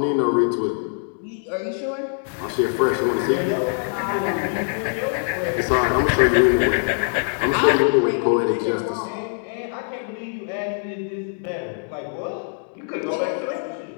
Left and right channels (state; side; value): silent; right; 63 dB below the other